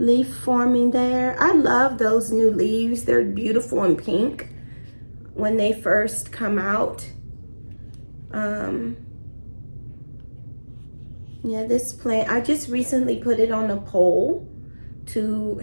forming there. I love those new leaves. They're beautiful and pink when they first come out. Yeah, this plant, I just recently put it on a pole to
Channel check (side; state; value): both; inverted; correlation -1.00